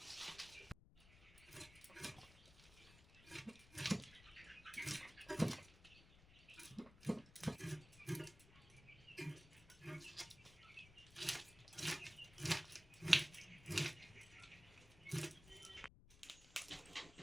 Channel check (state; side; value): noise; left; rumble, 21 dB below the sound